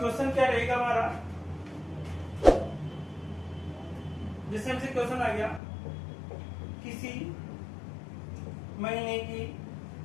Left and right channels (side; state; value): right; drops out; at 5.6 s